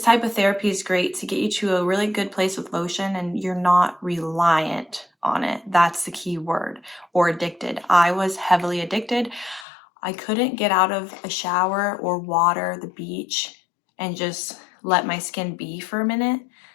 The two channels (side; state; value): right; drops out; at 9.7 s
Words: type of therapy is great to get you to a really good place with lotion and you're not reliant on it. That's the key word. Or addicted. I was heavily addicted. I couldn't get out of a shower or water, the beach, and just let my skin be for a minute.